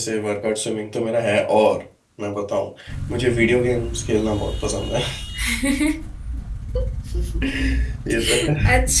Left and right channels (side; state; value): both; identical; correlation 1.00